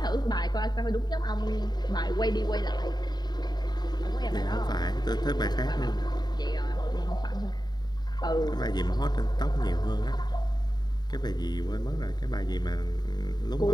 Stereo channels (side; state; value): right; late; 0.20 ms